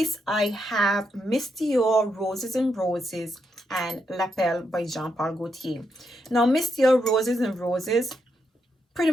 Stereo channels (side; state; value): both; normal; correlation 0.81